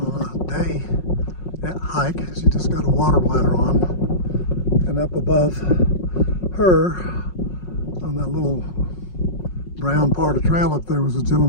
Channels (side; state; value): right; late; 5.5 ms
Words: a day hike. She just got a water bladder on. And up above her, on that little brown part of the trail up there, was a